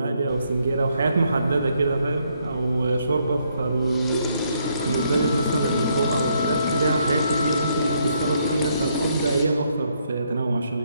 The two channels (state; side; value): inverted; both; correlation -0.73